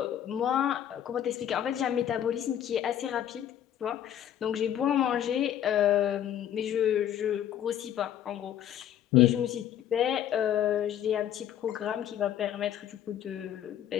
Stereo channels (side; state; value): right; quieter; 10.6 dB